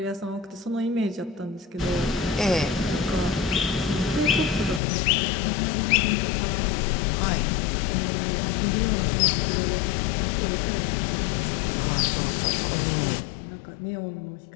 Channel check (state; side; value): drops out; right; at 4.8 s